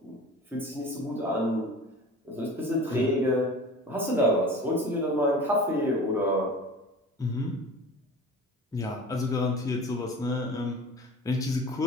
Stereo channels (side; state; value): both; normal; correlation 0.39